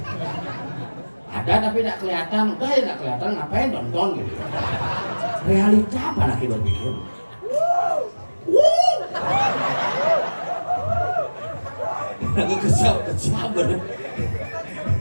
Ada tapi tidak kelihatan. Udah ya nggak kelihatan ngapain nonton gitu. Realita apa lagi berpikir? Aku kesal bener.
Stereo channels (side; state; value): both; inverted; correlation -1.00